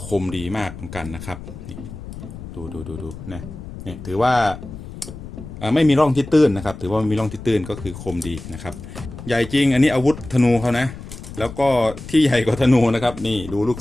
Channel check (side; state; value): left; noise; rumble, 12 dB below the sound